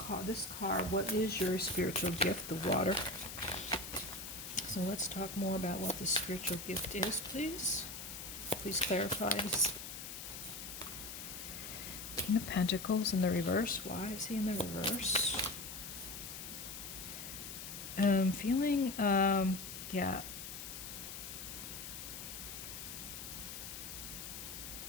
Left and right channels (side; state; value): left; noise; hiss, 8 dB below the sound